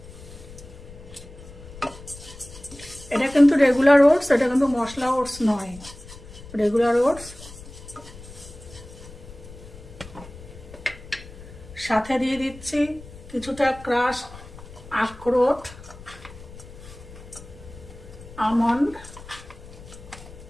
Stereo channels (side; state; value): left; noise; rumble, 17 dB below the sound